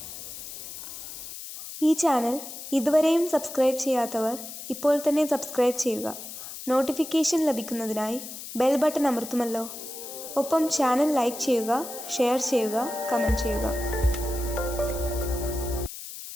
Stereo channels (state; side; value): noise; left; hiss, 11 dB below the sound